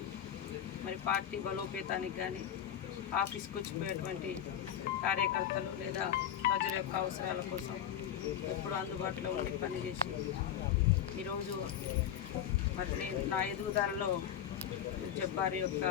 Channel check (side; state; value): right; quieter; 9.9 dB